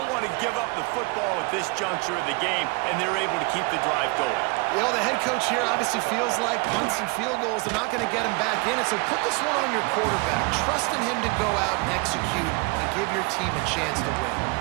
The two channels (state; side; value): quieter; left; 28.9 dB